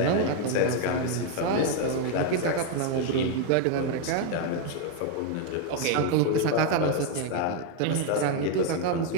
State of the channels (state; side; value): different; both; correlation 0.01